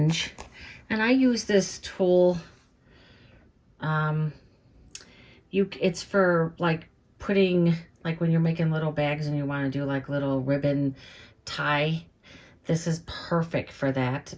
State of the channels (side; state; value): both; identical; correlation 1.00